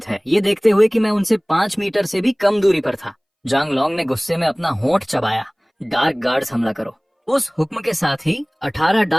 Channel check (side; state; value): both; identical; correlation 1.00